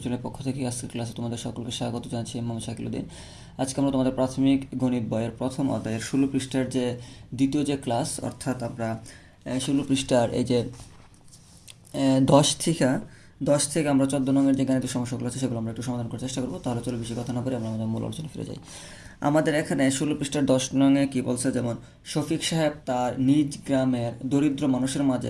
চ্যানেলের পক্ষ থেকে আজকের ক্লাসে তোমাদের সকলকে স্বাগত জানাচ্ছি। মোহাম্মদ শাকিলউদ্দিন। আজকে আমরা তোমাদের প্রাথমিক গণিত বইয়ের প্রথম অধ্যায়ের 16 পৃষ্ঠার যে দ্বিতীয় যে ক্লাস, অর্থাৎ আমরা 16 পৃষ্ঠার এই যে 10 থেকে আমরা 14 নঙের যে গাণিতিক সমস্যাগুলো আছে সেগুলো আমরা একটু সমাধান করার চেষ্টা করবো। তাহলে চলো বেশি কথা না বলে আমরা আমাদের মূল আলোচনা ফিরে যাই। আমাদের এখানে 16 পৃষ্ঠার 10 নঙে কী বলছে, যেমন শফিক সাহেব তার নিজ গ্রামের দরিদ্র মানুষের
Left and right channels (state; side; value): identical; both; correlation 1.00